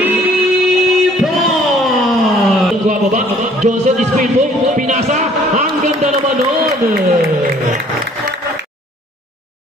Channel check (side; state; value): both; normal; correlation 0.57